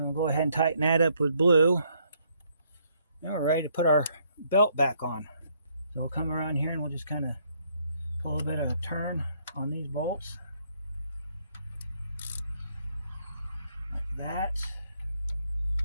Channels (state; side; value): inverted; both; correlation -0.69